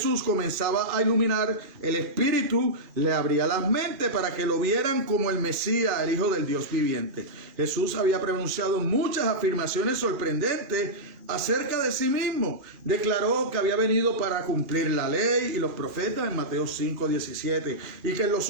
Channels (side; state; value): left; late; 2.4 ms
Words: comenzaba a iluminar, el Espíritu le abría las mentes para que lo vieran como el Mesías, el Hijo del Dios viviente. Jesús había pronunciado muchas afirmaciones sorprendentes acerca de sí mismo. Declaró que había venido para cumplir la ley y los profetas en Mateo 5:17, y que en los